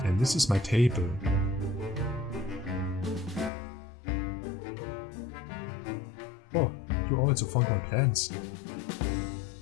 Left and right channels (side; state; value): right; drops out; at 3.5 s